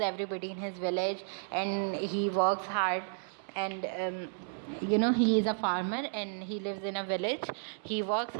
everybody in his village and he works hard. And he is a farmer and he lives in a village. He works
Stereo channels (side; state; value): left; silent; digital silence